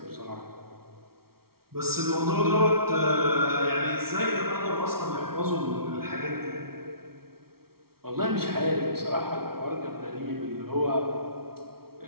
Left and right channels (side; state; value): left; late; 0.94 ms